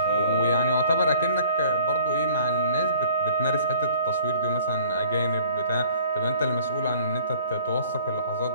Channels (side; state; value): both; inverted; correlation -0.51